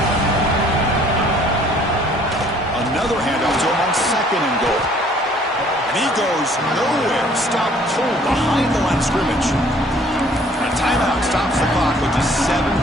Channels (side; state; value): both; normal; correlation 0.58